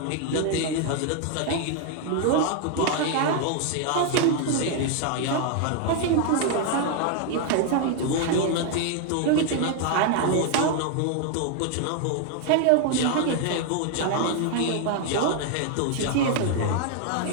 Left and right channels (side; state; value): both; different; correlation 0.00